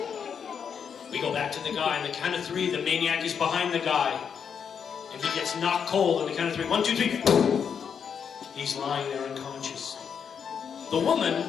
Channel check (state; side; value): quieter; right; 7.1 dB